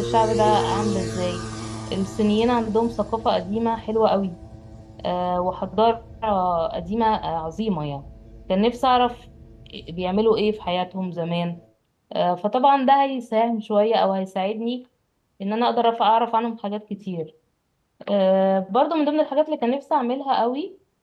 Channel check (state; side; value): identical; both; correlation 1.00